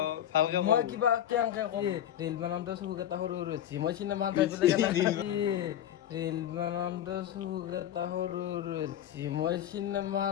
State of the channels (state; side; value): quieter; right; 11.1 dB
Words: মই কিবা কেনেকে ৰেল বানাওঁতে চকুক এটা সৰু সৰু হৈছে মই চিনেমা চাই পেলাই ৰেল বানাওঁতে চকুক এটা সৰু সৰু হৈছে মই চিনেমা